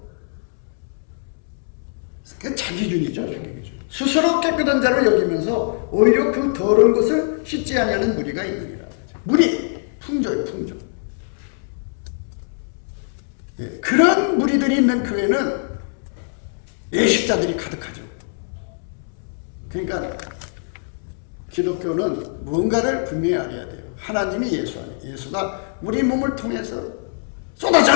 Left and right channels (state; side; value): silent; right; 64 dB below the other